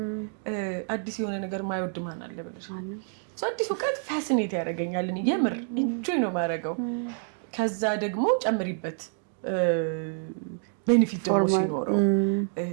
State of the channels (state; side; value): silent; left; 59 dB below the other